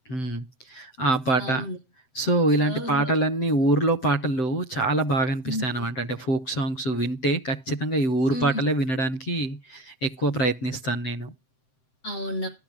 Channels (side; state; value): right; late; 7.8 ms